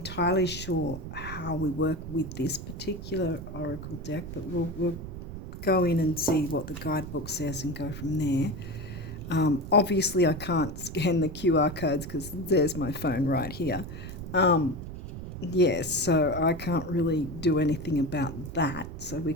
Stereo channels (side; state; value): right; noise; rumble, 9 dB below the sound